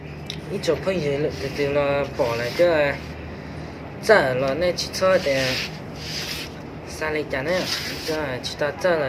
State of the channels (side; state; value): both; identical; correlation 1.00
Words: 一找朋友了，对了，跑了这这了那汽车的三里家呢，这去到这